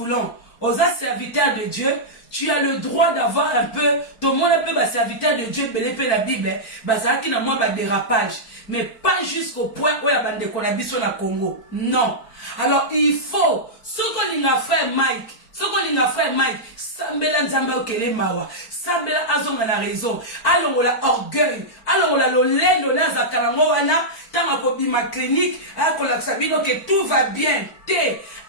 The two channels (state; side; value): late; right; 4.5 ms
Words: aux serviteurs de Dieu, tu as le droit d'avoir un peu, tout le monde peut ba serviteur de Dieu, belé la Bible, ba ça qui na moi ba dérapage, mais pas jusqu'au point où ya bande ko na biso na Congo. Non. Alors il faut ce qu'on a fait Mike, ce qu'on a fait Mike, sambela nzamba okele mawa, sambela azonga na raison, allons la orgueil, allons la lolendo na zakalango wana, tanga ko bima clinique, akola sabino que tout va bien.